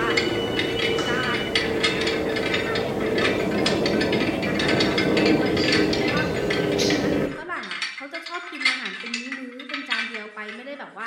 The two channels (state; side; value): identical; both; correlation 1.00